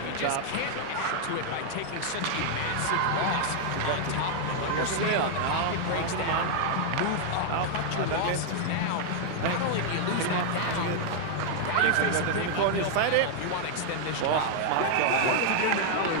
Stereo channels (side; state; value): both; different; correlation 0.00